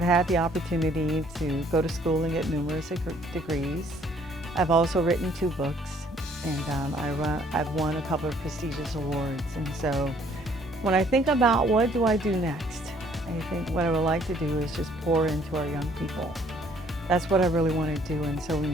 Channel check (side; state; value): both; normal; correlation 0.62